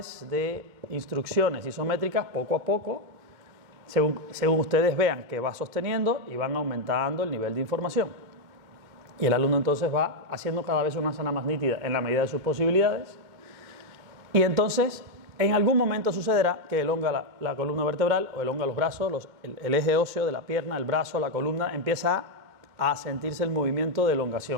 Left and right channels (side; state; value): left; late; 2.2 ms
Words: de instrucciones isométricas poco a poco, según ustedes vean que va sosteniendo y van aumentando el nivel de información. Y el alumno entonces va haciendo cada vez una asana más nítida en la medida de sus posibilidades. Y entonces, en algún momento sucederá que elonga la columna vertebral o elonga los brazos, el eje óseo de la pierna, el brazo, la columna, empieza a sentirse el movimiento de